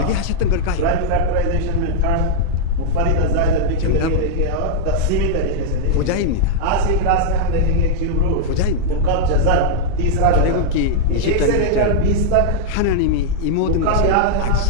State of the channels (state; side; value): different; both; correlation -0.02